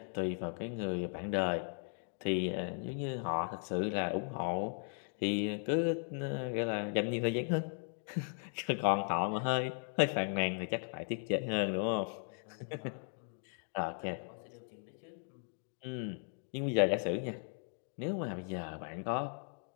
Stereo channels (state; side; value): silent; right; 53 dB below the other